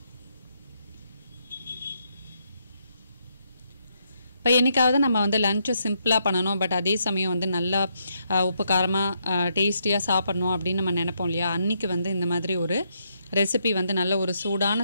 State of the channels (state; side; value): inverted; both; correlation -0.76